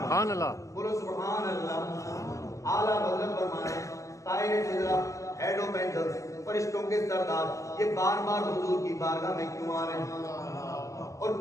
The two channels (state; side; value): late; right; 0.16 ms